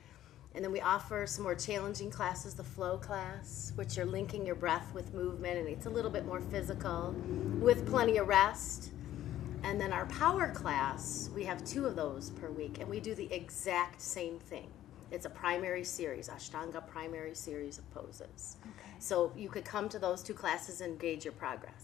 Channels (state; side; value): quieter; right; 12.8 dB